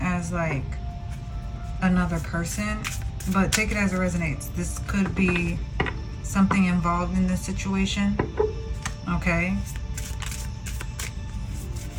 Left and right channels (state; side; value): identical; both; correlation 1.00